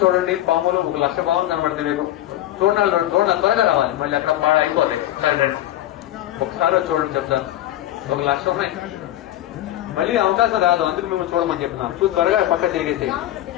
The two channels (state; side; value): quieter; right; 14.0 dB